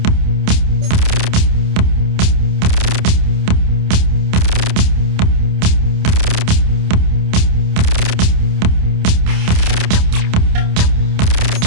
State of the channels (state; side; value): late; left; 28 ms